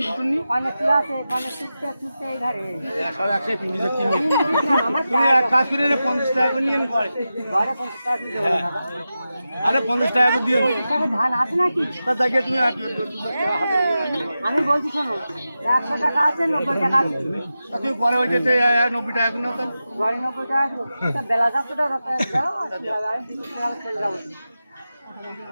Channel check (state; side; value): inverted; both; correlation -0.92